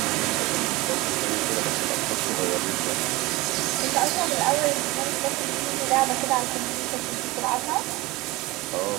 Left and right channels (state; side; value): quieter; left; 21.5 dB